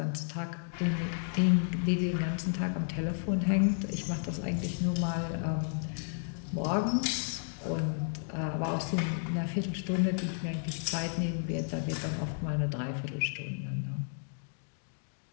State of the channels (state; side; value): silent; right; digital silence